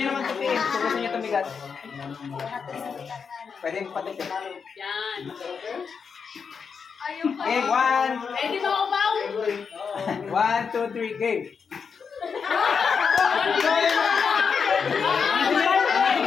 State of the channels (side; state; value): right; quieter; 6.0 dB